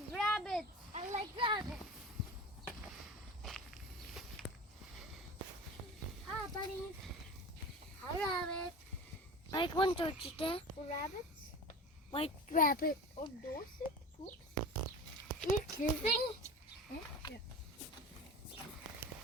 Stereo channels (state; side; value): normal; both; correlation 0.34